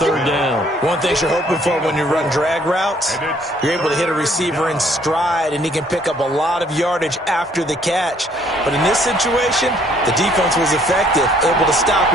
down. One thing you're hoping for when you run drag routes, you're able to hit a receiver in stride, and he can pick up a lot of yardage after the catch. But in this situation, the defense was effective, able to stop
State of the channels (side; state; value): both; normal; correlation 0.63